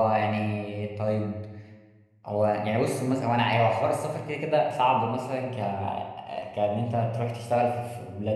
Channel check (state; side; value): identical; both; correlation 1.00